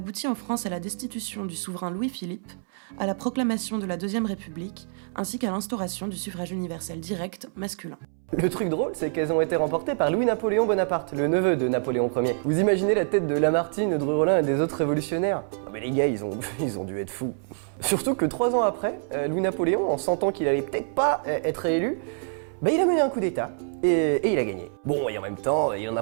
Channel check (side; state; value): left; silent; 61 dB below the other